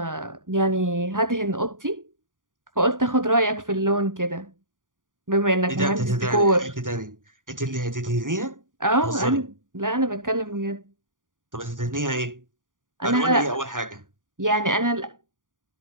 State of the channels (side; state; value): left; late; 0.89 ms